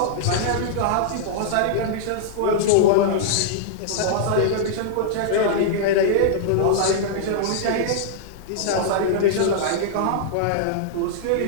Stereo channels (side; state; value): both; different; correlation -0.01